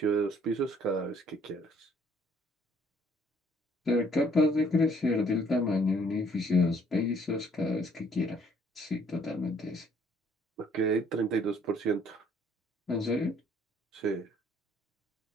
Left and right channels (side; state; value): both; normal; correlation 0.62